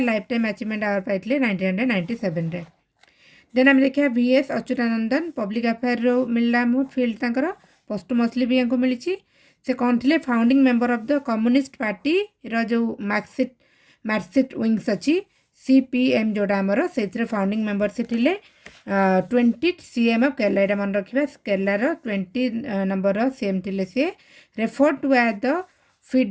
lifetime achievement award पाई 1997। देन आम देखा VS अच्युतानंदन पब्लिक अफेयर मिलला फिल्ड तंकर पोस्टमसली भी हमको मिली। से कौन थे founding member of the communist party जो मार्कसिस्ट विंग्स अच्छी CPM जोड़ा आमर से फाउंडिंग मेंबर से थे 20 CM ऑफ केरला। यहाँ मन रखा केरलार 20 नंबर CM थे सी refer to as the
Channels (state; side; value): identical; both; correlation 1.00